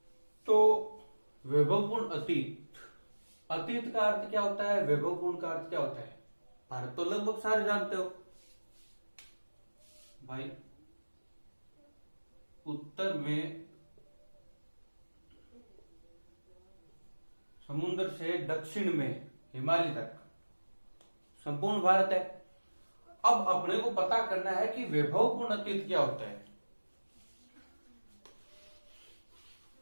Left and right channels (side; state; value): both; inverted; correlation -1.00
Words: तो वैभवपूर्ण अतीत, अतीत का अर्थ क्या होता है, वैभवपूर्ण का अर्थ क्या होता है, भारत तो लगभग सारे जानते हो भाई। उत्तर में समुद्र से दक्षिण में हिमालय तक संपूर्ण भारत है। अब अपने को पता करना है कि वैभवपूर्ण अतीत क्या होता है।